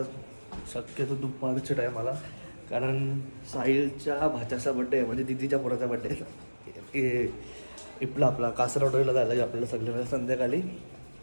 शक्यतो दुपारच्या टायमाला, कारण साहिलच्या भाच्याचा बड्डे आहे, म्हणजे दिदीच्या पोराचा बड्डे आहे. इपला आपला कासरवाडीला जायला आपल्याला सगळ्यांना संध्याकाळी.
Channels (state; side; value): inverted; both; correlation -1.00